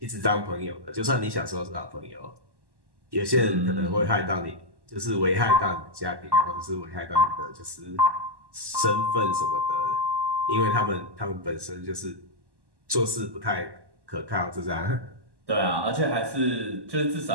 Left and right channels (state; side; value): late; left; 1.1 ms